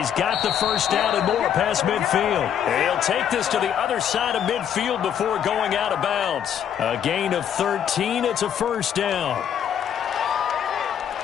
got the 1st down and more past midfield. He'll take this to the other side of midfield before going out of bounds. A gain of 13. It's a 1st down.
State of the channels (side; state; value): right; quieter; 9.1 dB